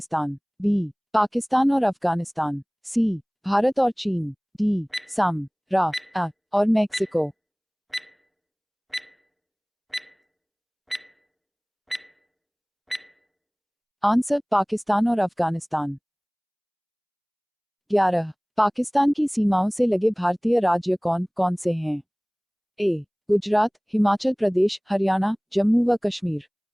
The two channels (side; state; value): both; identical; correlation 1.00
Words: बी पाकिस्तान और अफगानिस्तान, सी भारत और चीन। डी सम रा अ और मैक्सिको। आंसर पाकिस्तान और अफगानिस्तान। 11 पाकिस्तान की सीमाओं से लगे भारतीय राज्य कौन कौन से हैं? ए गुजरात, हिमाचल प्रदेश, हरियाणा, जम्मू व कश्मीर।